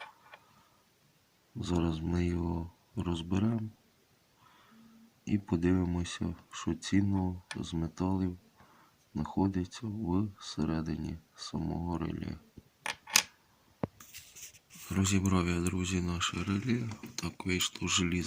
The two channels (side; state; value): both; identical; correlation 1.00